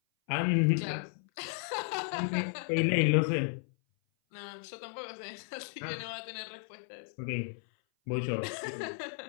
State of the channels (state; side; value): silent; right; 55 dB below the other